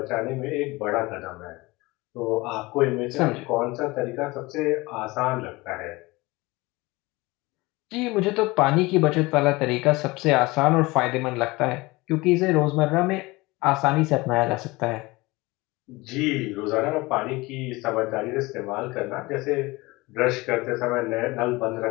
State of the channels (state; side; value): quieter; right; 22.3 dB